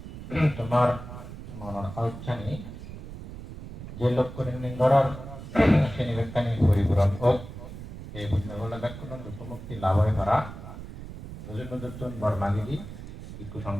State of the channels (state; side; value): noise; right; rumble, 12 dB below the sound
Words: তোমার মনের আউচ্ছানি যে লোক করে নিঙ্গরর শ্রেণী ব্যক্তানি পরিপূরণ হোক এই বুঝনাগুলো ব্যাকুণ দুঃখমুক্তি লাভ হয়ে পারা দুজন দুজন বর্মাগিরি ভিক্ষু সংঘ